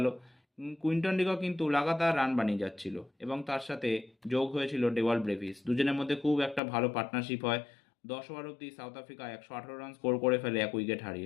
কুইন্টন ডিকক কিন্তু লাগাতার রান বানিয়ে যাচ্ছিল এবং তার সাথে যোগ হয়েছিল ডেওয়াল ব্রেভিস। দুজনের মধ্যে খুব একটা ভালো পার্টনারশিপ হয়। 10 ওভার অবধি সাউথ আফ্রিকা 118 রান স্কোর করে ফেলে এক উইকেট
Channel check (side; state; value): right; drops out; at 6.6 s